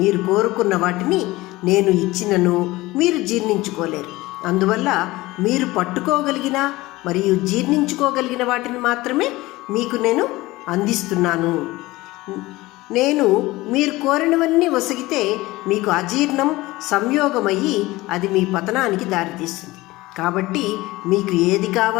మీరు కోరుకున్న వాటిని నేను ఇచ్చినను మీరు జీర్ణించుకోలేరు. అందువల్ల మీరు పట్టుకోగలిగిన మరియు జీర్ణించుకోగలిగిన వాటిని మాత్రమే మీకు నేను అందిస్తున్నాను. నేను మీరు కోరినవన్నీ ఒసగితే మీకు అజీర్ణం సంయోగమయ్యి అది మీ పతనానికి దారితీస్తుంది. కాబట్టి మీకు ఏది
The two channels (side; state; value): right; quieter; 19.5 dB